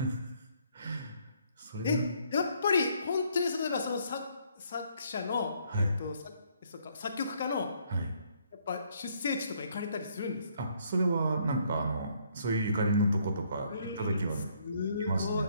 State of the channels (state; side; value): inverted; both; correlation -0.67